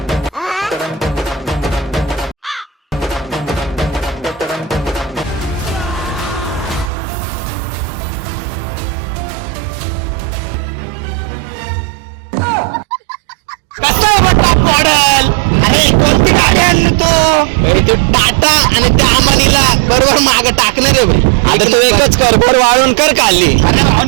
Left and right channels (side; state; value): left; drops out; at 6.9 s